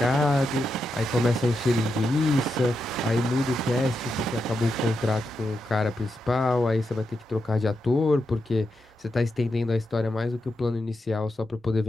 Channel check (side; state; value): both; normal; correlation 0.86